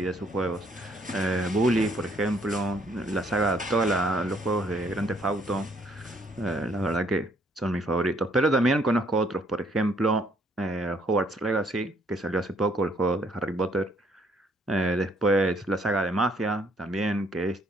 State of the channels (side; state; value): both; normal; correlation 0.66